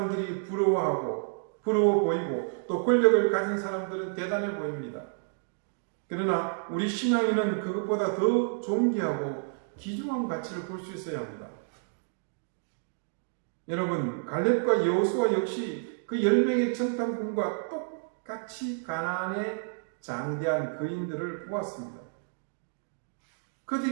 부러워 보이고 또 권력을 가진 사람들은 대단해 보입니다. 그러나 우리 신앙인은 그것보다 더 존귀하고 귀중한 가치를 볼 수 있어야 합니다. 여러분, 갈렙과 여호수아 역시 그 10명의 정탐꾼과 똑같이 가나안의 장대한 거인들을 보았습니다.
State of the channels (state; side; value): silent; left; digital silence